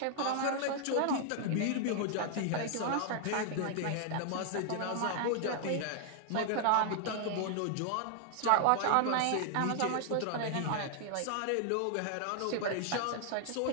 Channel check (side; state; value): both; different; correlation 0.00